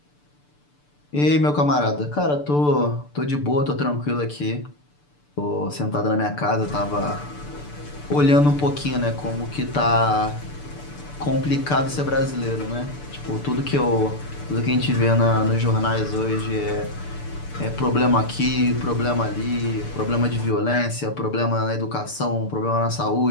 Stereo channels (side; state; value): right; late; 6.8 ms